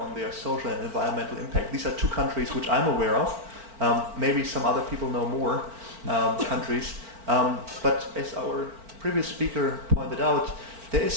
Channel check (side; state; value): left; late; 4.4 ms